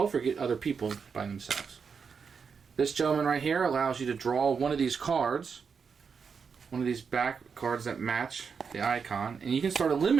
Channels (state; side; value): quieter; left; 5.9 dB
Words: or get other people by themselves. This gentleman right here allows you to draw one of these cards, one of these back cards that match the icon, and you can start